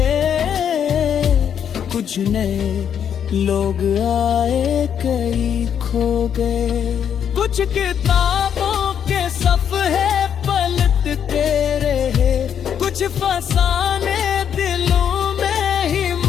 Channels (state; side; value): quieter; right; 8.5 dB